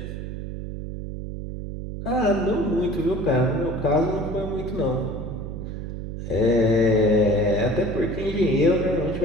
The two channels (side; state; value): right; noise; hum, 7 dB below the sound